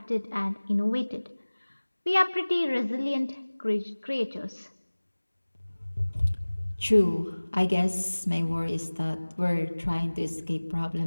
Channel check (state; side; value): inverted; both; correlation -1.00